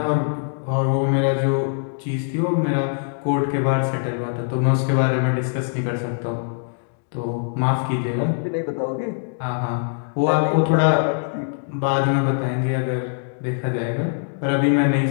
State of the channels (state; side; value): silent; right; digital silence